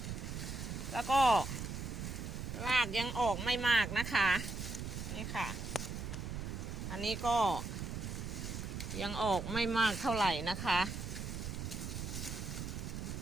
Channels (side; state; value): right; noise; rumble, 5 dB below the sound